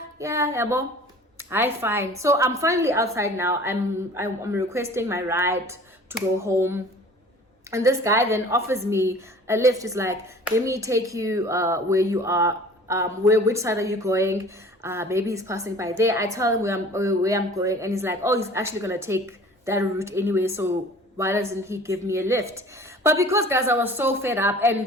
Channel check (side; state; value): both; normal; correlation 0.46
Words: yeah, bo. Hi, fine. So I'm finally outside now. I'm requesting my ride to go home, and this guy then offers me a lift. He's like, let me take you where you are. Which side are you going? Maybe he's passing by there. I tell him where I'm going, and he's like, oh, he's actually gonna take that route anyway, so why doesn't he give me a lift? But because, guys, I was so fed up